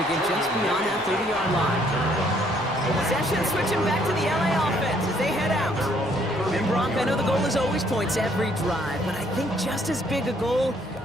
get just beyond that 30-yard line. Possession switching back to the LA offense as they head out. And Brock, I know the goal is always points every drive, but I think just as big a goal,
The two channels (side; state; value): left; noise; rumble, 28 dB below the sound